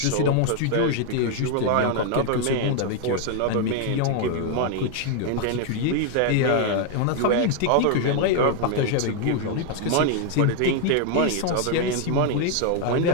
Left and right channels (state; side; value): different; both; correlation 0.00